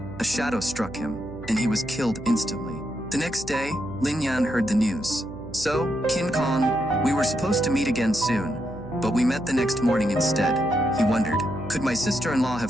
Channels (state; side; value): noise; right; hum, 14 dB below the sound